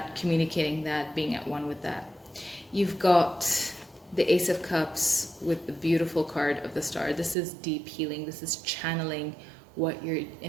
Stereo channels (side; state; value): left; drops out; at 7.4 s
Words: communicating that, being at one with that. You've got the Ace of Cups with the beautiful card of the Star. This is deep healing. This is channeling what your